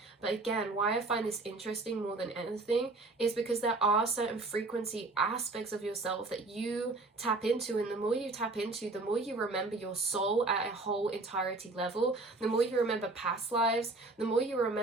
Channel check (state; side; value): quieter; left; 3.2 dB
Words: But again, why I find this interesting more than anything is because there are certain frequency aspects of yourself that you tap into, and the more you tap into, the more you remember your soul at a whole entirety level, the more you remember past lives, the more you